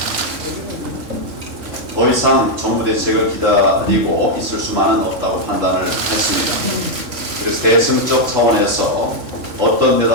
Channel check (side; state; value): left; late; 3.6 ms